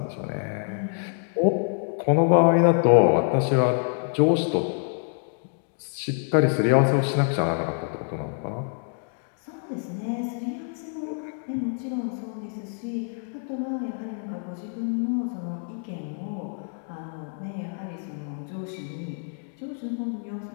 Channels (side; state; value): right; silent; 61 dB below the other